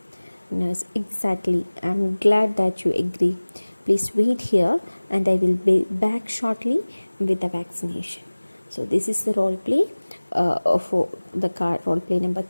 Nurse, exactly. I'm glad that you agree. Please wait here and I will be back shortly with the vaccination. So this is the role play for the card role play number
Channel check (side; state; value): both; inverted; correlation -1.00